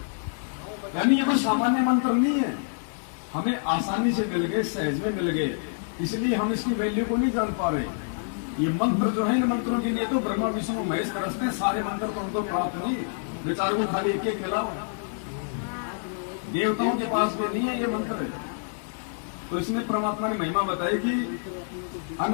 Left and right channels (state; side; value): silent; right; digital silence